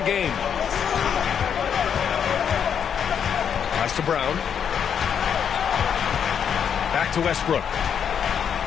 game. Pass to Brown. Back to Westbrook.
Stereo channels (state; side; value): quieter; right; 7.9 dB